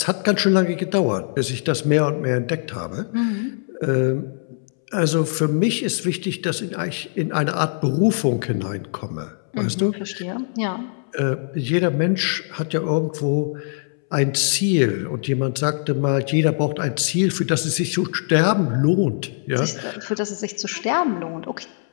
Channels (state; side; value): silent; right; 64 dB below the other